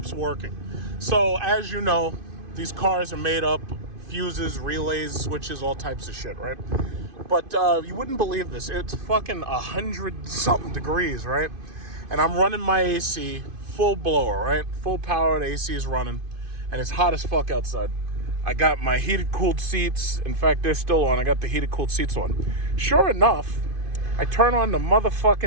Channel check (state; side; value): late; left; 2.5 ms